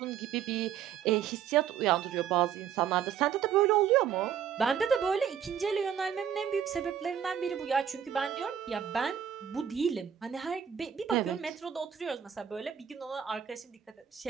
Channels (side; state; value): left; quieter; 8.7 dB